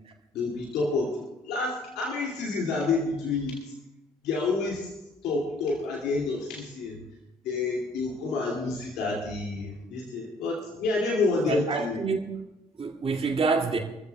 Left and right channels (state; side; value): normal; both; correlation 0.58